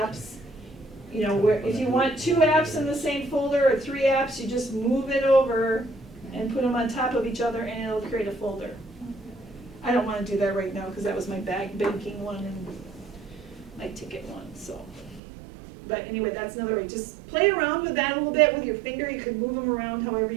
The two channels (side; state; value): left; drops out; at 15.2 s